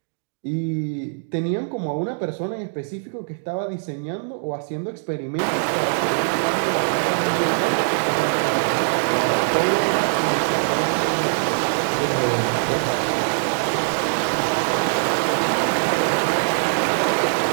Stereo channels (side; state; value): left; silent; digital silence